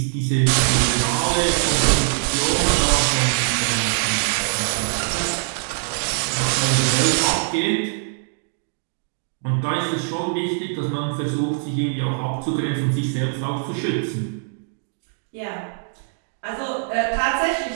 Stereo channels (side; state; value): left; silent; digital silence